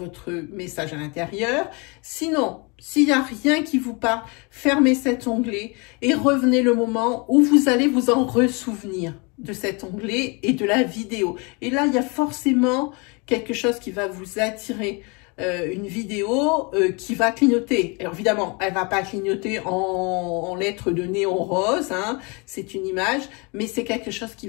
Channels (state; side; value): quieter; right; 30.3 dB